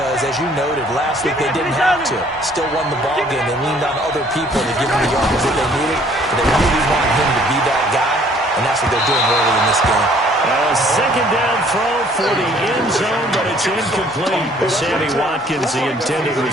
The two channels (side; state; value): both; normal; correlation 0.59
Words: as you noted, last week they didn't have to. Still won the ball game. They leaned on other people to give them the yards that they needed. But they really want him to be that guy, and that's what they're doing early in this game. A 2nd down throw for the end zone, but it's incomplete. Sammy Watkins, the intended